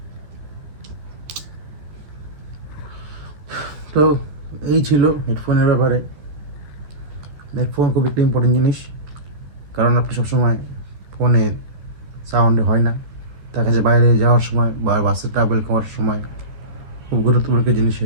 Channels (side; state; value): left; late; 13 ms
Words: তো এই ছিল হেডফোনের ব্যাপারে। হেডফোন খুব একটা ইম্পর্টেন্ট জিনিস, কারণ আপনি সবসময় ফোনে সাউন্ড হয় না, দেখা যায় বাইরে যাওয়ার সময় বা বাসে ট্রাভেল করার সময় খুব গুরুত্বপূর্ণ একটা জিনিস